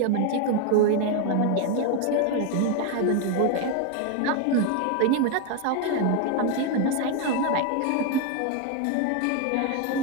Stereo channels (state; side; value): different; both; correlation 0.01